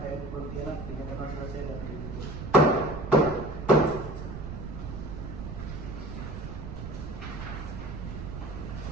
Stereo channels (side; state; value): right; noise; rumble, 7 dB below the sound